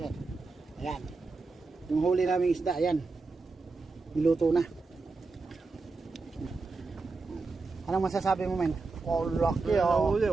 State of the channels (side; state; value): left; quieter; 3.9 dB